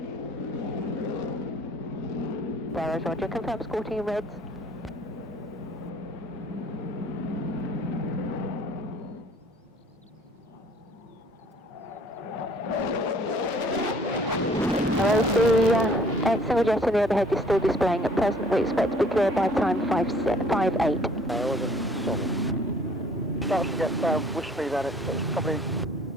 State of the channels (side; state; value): both; normal; correlation 0.56